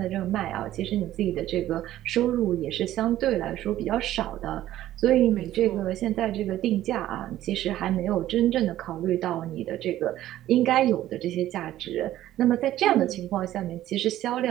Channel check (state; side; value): quieter; left; 13.6 dB